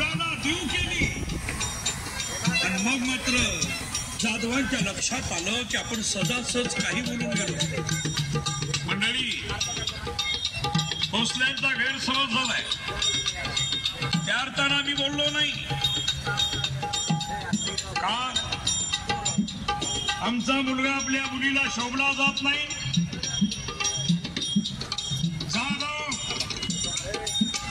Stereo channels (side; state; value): both; identical; correlation 1.00